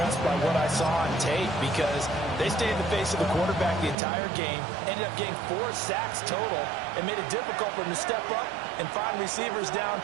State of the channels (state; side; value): drops out; left; at 4.0 s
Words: by what I saw on tape because they stayed in the face of the quarterback the entire game, ended up getting 4 sacks total, and made it difficult for him to step up and find receivers